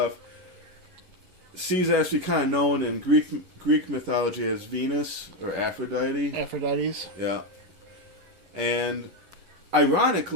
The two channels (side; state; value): left; late; 11 ms